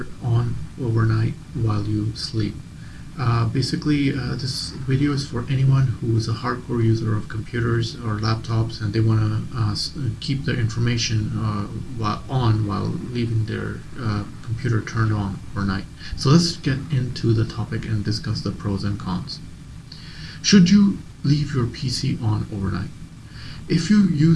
on overnight while you sleep. This video is for anyone who is a hardcore user of computers or laptops and they want to keep their information while leaving their computer turned on overnight. So let's get into the topic and discuss the pros and cons. Should you leave your PC on overnight? If you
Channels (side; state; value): both; identical; correlation 1.00